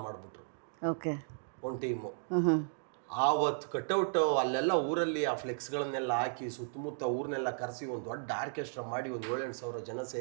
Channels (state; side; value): silent; left; digital silence